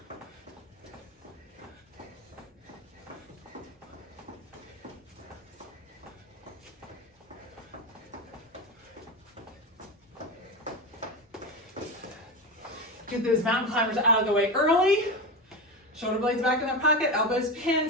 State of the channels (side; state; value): both; normal; correlation 0.20